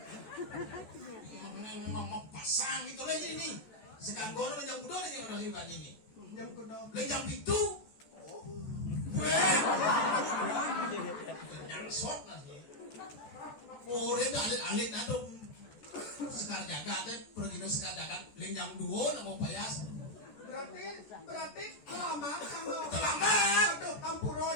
ngomong pasang itu lagi ini sekarang gono yang kudo dan yang nasi pagi ini Yang kudo. jam itu weh nyangsot nasi orang itu alit-alit atau sekar jaga teh pergi no sekar jaga jam 2 nak mau payas Berarti selamat sama. Selamat. Aduh, hampuro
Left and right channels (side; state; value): right; late; 14 ms